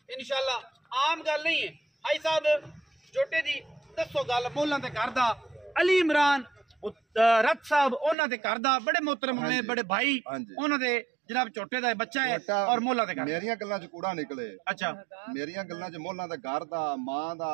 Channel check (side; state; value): left; drops out; at 8.2 s